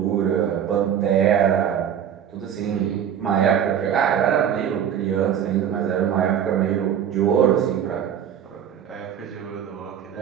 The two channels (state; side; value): quieter; left; 9.1 dB